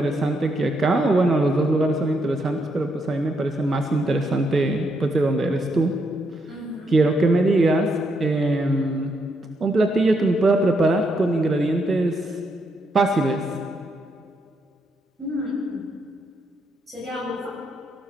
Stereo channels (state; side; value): normal; both; correlation 0.78